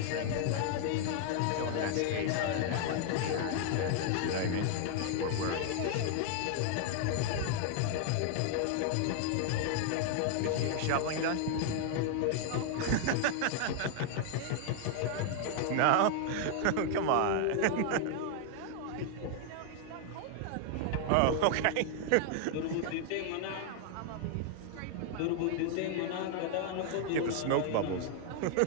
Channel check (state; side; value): different; both; correlation 0.00